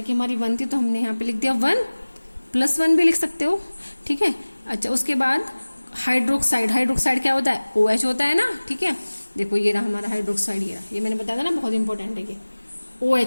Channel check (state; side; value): inverted; both; correlation -1.00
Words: की हमारी 1 थी, तो हमने यहाँ पे लिख दिया 1 + 1 भी लिख सकते हो, ठीक है। अच्छा, उसके बाद हाइड्रोक्साइड क्या होता है, OH होता है ना, ठीक है। देखो ये रहा हमारा हाइड्रोक्साइड, ये मैंने बताया था ना बहुत इंपॉर्टेंट है ये